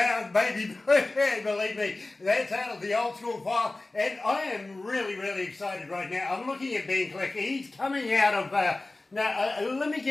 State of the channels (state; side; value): quieter; right; 3.0 dB